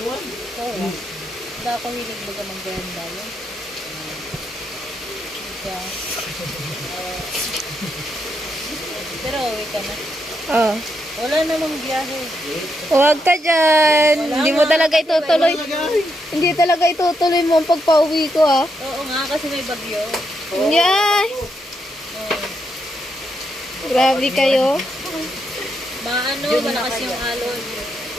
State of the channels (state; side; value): normal; both; correlation 0.81